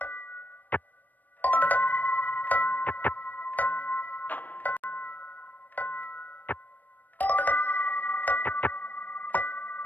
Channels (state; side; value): late; right; 0.085 ms